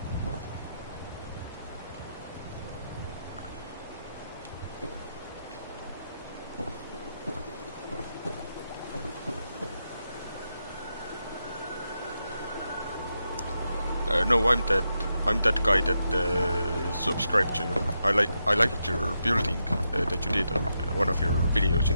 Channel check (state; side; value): inverted; both; correlation -0.85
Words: No, I'm that guy that subscribed to you. I liked your building that you did on one of your videos